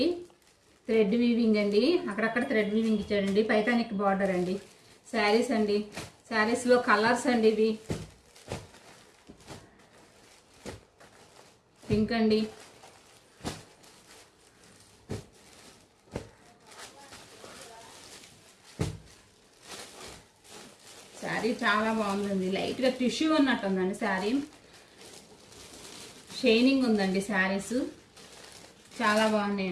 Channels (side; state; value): both; identical; correlation 1.00